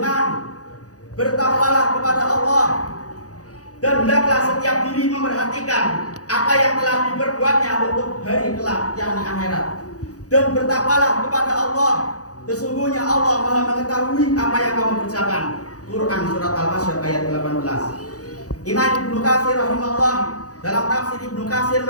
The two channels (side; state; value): right; late; 0.67 ms